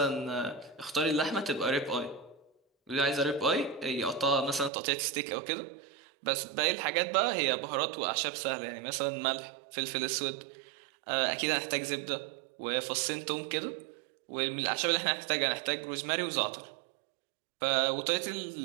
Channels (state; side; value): drops out; left; at 4.7 s